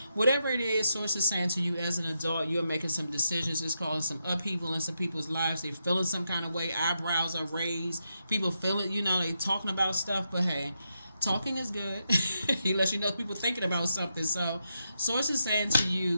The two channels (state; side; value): inverted; both; correlation -0.84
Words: whatever it is, Source is saying to you as an adult, you're making some decisions. It's causing some upheaval in some people's lives. They're feeling some kind of way. Eyebrows are raised. People feel it. They talking about stuff. But hey, talking is good. He lets you know people thinking about something. So Source is saying to